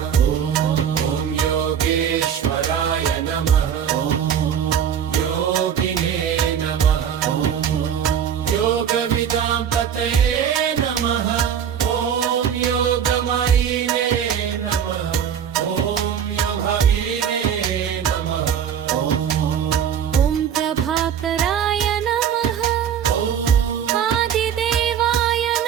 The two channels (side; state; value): left; quieter; 8.5 dB